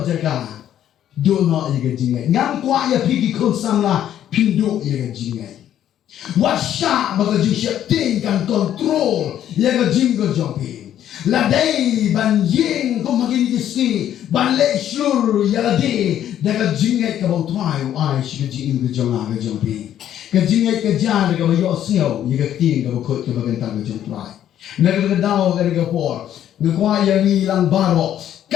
jaga. Do not ye ke jingay. Ngam kwah ya pergi kon samla pinduk ye ke jingay. Wasya baka jing syepting kan kontrol ye ke jing ke jompi. Ladai ban ying kau makin kisni ban le Shlur ya ladai dah jingay ke bau trai ai shi ke jing ke jonga ke jompi. Ke jingay ke jan ke bau yok siau ye ke ting ke bau kot ke bagan tang ke jong trai. Negara daw ke por ngkwah ya ni lang baro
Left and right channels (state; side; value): quieter; right; 10.9 dB